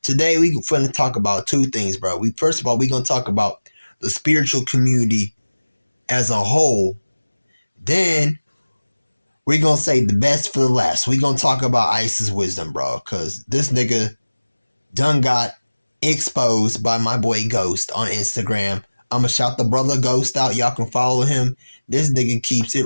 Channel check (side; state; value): both; inverted; correlation -1.00